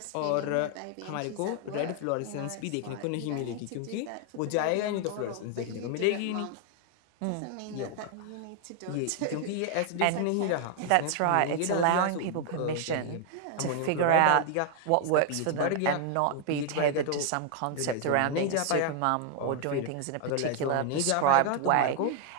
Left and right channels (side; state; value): both; different; correlation 0.00